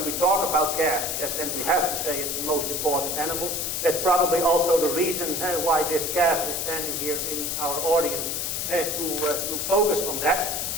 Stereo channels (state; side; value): noise; left; hiss, 2 dB below the sound